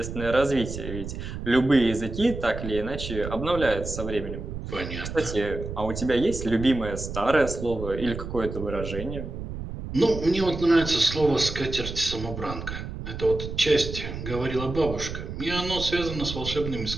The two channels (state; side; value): noise; right; rumble, 7 dB below the sound